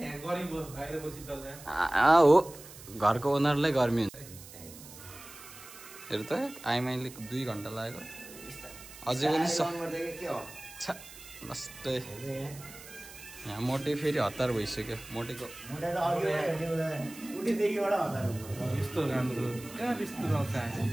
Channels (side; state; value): right; noise; hiss, 17 dB below the sound